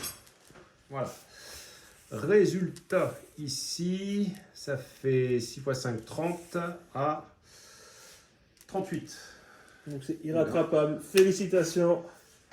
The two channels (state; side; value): identical; both; correlation 1.00